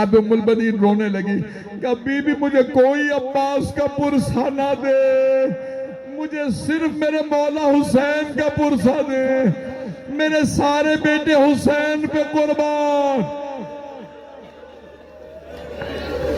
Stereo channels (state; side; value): identical; both; correlation 1.00